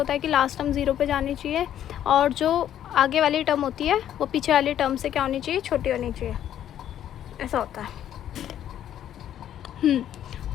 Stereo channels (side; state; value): right; quieter; 10.8 dB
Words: है कि लास्ट टर्म 0 पे जानी चाहिए, और जो आगे वाली टर्म होती है वो पीछे वाली टर्म से क्या होनी चाहिए, छोटी होनी चाहिए, ऐसा होता है.